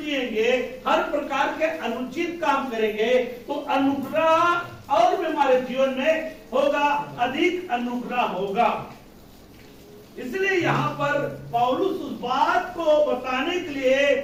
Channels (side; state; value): both; identical; correlation 1.00